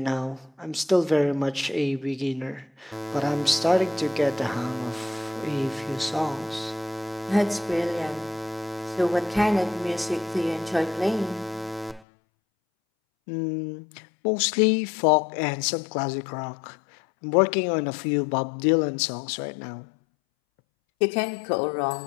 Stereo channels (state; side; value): drops out; right; at 12.0 s